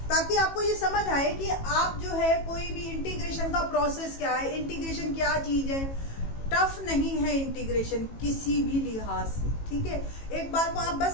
ताकि आपको ये समझ आए कि आप जो है कोई भी इंटीग्रेशन का प्रोसेस क्या है, इंटीग्रेशन क्या चीज है। टफ नहीं है इंटीग्रेशन किसी भी लिहाज से, ठीक है। एक बार को आप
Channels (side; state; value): right; late; 18 ms